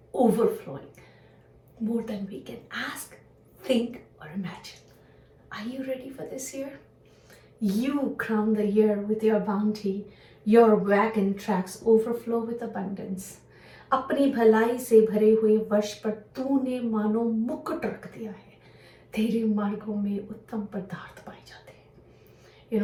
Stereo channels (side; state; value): both; identical; correlation 1.00